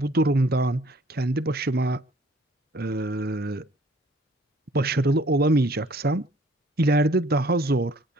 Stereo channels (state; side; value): normal; both; correlation 0.57